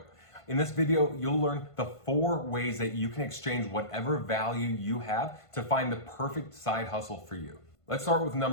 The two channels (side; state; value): right; late; 1.5 ms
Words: In this video, you'll learn the 4 ways that you can exchange whatever value you have to find the perfect side hustle for you. Let's start with